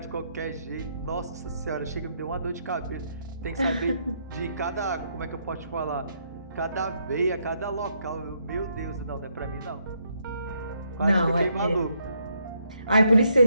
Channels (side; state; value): both; inverted; correlation -0.74